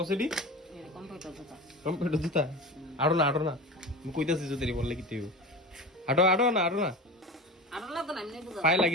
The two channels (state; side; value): normal; both; correlation 0.31